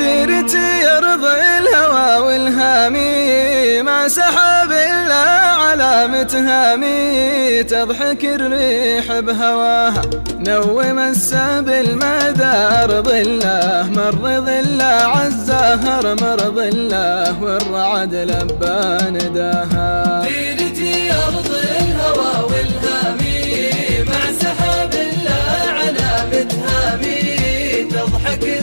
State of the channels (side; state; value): both; inverted; correlation -1.00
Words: أرض الهوى والهامي، مع سحاب الله علامة هامي، تضحك الريح بهواها نوم السبل مدى أرض الله، مر ظله عالزهر مر ظله والرعد لبى نداها. ديرتي أرض الهوى والهامي، مع سحاب الله علامة هامي، تضحك